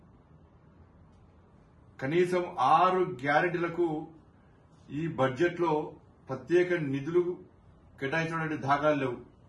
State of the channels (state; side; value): identical; both; correlation 1.00